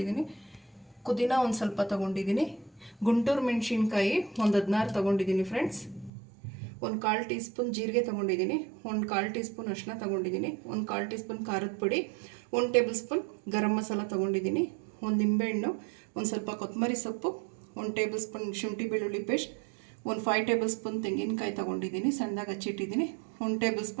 ಪುದೀನ ಒಂದು ಸ್ವಲ್ಪ ತಗೊಂಡಿದ್ದೀನಿ. ಗುಂಟೂರು ಮೆಣಸಿನ್ಕಾಯಿ ಒಂದು 16 ತಗೊಂಡಿದ್ದೀನಿ ಫ್ರೆಂಡ್ಸ್. ಒಂದು 1/4 ಟೀ ಸ್ಪೂನ್ ಜೀರಿಗೆ ತೊಗೊಂಡಿದ್ದೀನಿ. ಒಂದು 1/4 ಟೀ ಸ್ಪೂನ್ ಅರಿಶಿನ ತೊಗೊಂಡಿದ್ದೀನಿ. ಒಂದು 1/4 ಟೀ ಸ್ಪೂನ್ ಖಾರದ ಪುಡಿ. 1 ಟೇಬಲ್ ಸ್ಪೂನ್ ಗರಂ ಮಸಾಲ ತೊಗೊಂಡಿದ್ದೀನಿ. ಒಂದು ನಿಂಬೆಹಣ್ಣು, ಒಂದು ಸ್ವಲ್ಪ ಕೊತ್ತಂಬರಿ ಸೊಪ್ಪು, 1 ಟೇಬಲ್ ಸ್ಪೂನ್ ಶುಂಠಿ ಬೆಳ್ಳುಳ್ಳಿ ಪೇಸ್ಟ್, ಒಂದು 5 ಟೇಬಲ್ ಸ್ಪೂನ್ ತೆಂಗಿನಕಾಯಿ ತೊಗೊಂಡಿದ್ದೀನಿ, ಸಣ್ಣದಾಗಿ ಹಚ್ಚಿಟ್ಟಿದ್ದೀನಿ. 1 ಟೇಬಲ್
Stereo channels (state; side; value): drops out; left; at 6.1 s